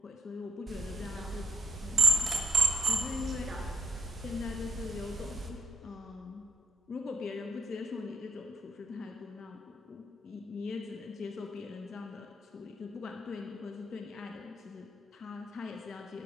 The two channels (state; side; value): normal; both; correlation 0.77